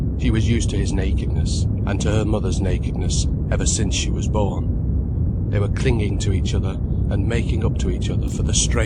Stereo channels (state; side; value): identical; both; correlation 1.00